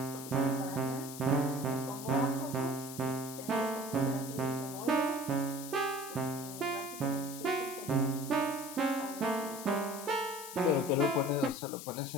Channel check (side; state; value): left; noise; hiss, 11 dB below the sound